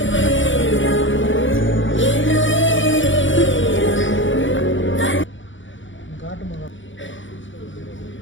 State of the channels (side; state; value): right; late; 0.56 ms